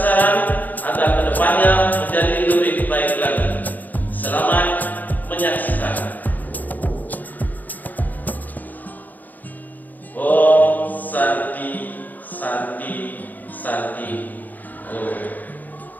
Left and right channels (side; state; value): right; late; 0.084 ms